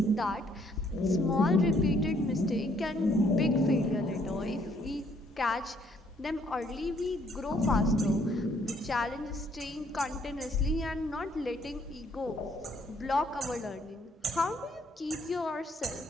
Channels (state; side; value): normal; both; correlation 0.66